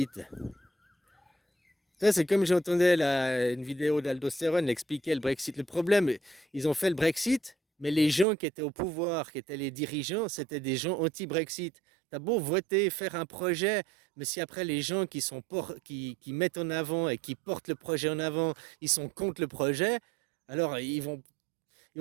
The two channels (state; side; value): drops out; left; at 8.2 s